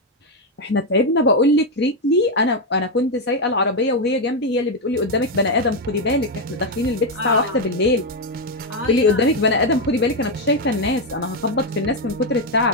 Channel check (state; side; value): normal; both; correlation 0.04